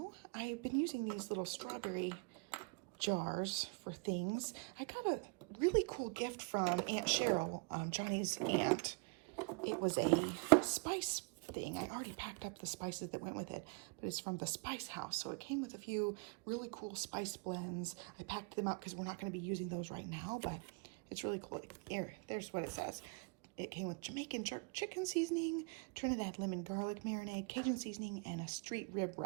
I've been using these little strawberry jars for things. I got a really cool gift from Aunt Cheryl, Johnny's aunt. It was a spice thing. I already packed up the spices that went with it, but it's from the Spice House. So it came with a few really cool spice blends. I packed them up because we're not going to be using those right now, but it's really cool. There's what it says. It came with Jamaican jerk chicken seasoning, Trinidad lemon garlic marinade, Cajun seasoning, and a street rib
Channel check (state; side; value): quieter; left; 32.3 dB